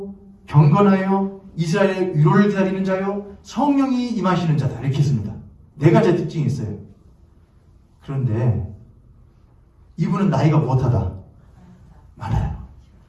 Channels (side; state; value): both; identical; correlation 1.00